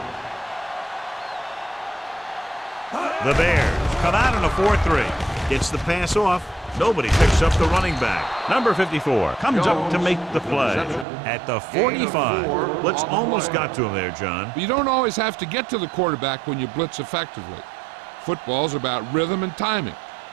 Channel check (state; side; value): drops out; left; at 11.1 s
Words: The Bears come out in a 4-3. Gets the pass off. Nobody picks up the running back. Number 54 comes up to make the play at the 45. Blitz almost got to him there, John. But you don't always have to get to the quarterback when you blitz effectively. Football's about rhythm and timing.